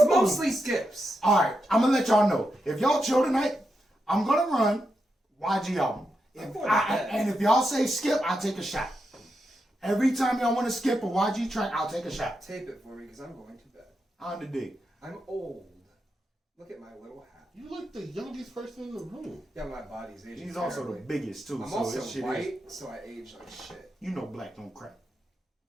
mostly skips. All right, I'm gonna let y'all know. If y'all chill tonight, I'm gonna run YG album. And if y'all say skip, I'll take a shot. Every time y'all want to skip a YG track, I'll take a shot. Tape it for me because I'm going to bed. On the dig. I'm old. Look at my little hat. good. You like the youngest person in the room. Yeah, my body's aging. He's also the terribly. biggest too. I'm so also this shit white, so I age like shit. you know black don't crack.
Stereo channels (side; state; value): both; normal; correlation 0.86